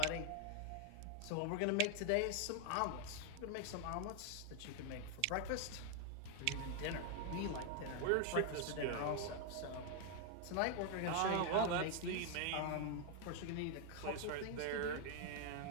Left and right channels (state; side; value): different; both; correlation 0.00